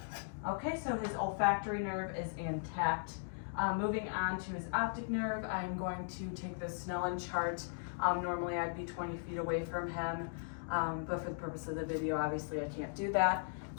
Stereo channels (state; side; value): silent; right; digital silence